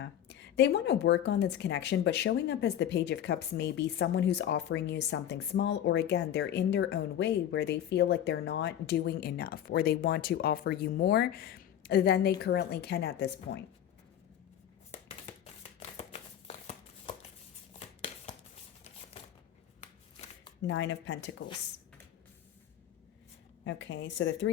They want to work on this connection, but showing up as the Page of Cups may be someone who's offering you something small, or again, they're in their own way where they feel like they're not doing enough, or they want to offer you more than they currently can at this point. Nine of Pentacles. Okay, so the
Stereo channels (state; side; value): quieter; right; 10.5 dB